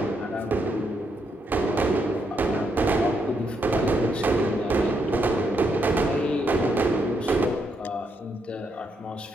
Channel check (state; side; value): normal; both; correlation 0.78